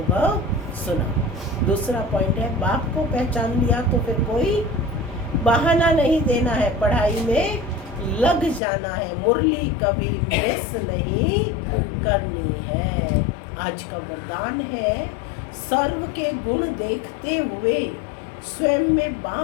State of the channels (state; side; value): drops out; right; at 8.6 s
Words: सुना। दूसरा पॉइंट है बाप को पहचान लिया तो फिर कोई बहाना नहीं देना है, पढ़ाई में लग जाना है। मुरली कभी मिस नहीं करनी है। आज का वरदान है सर्व के गुण देखते हुए स्वयं में